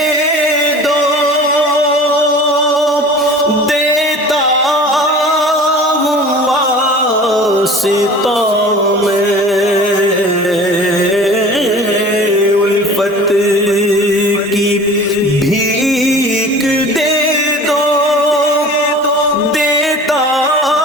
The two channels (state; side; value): normal; both; correlation 0.42